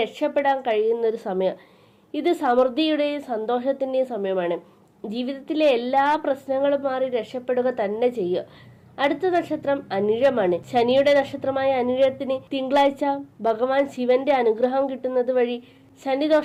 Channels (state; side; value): identical; both; correlation 1.00